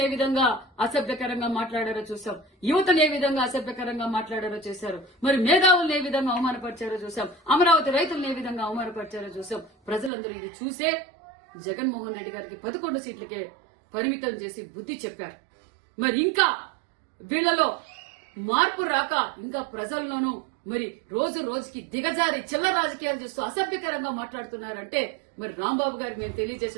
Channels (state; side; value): drops out; left; at 10.1 s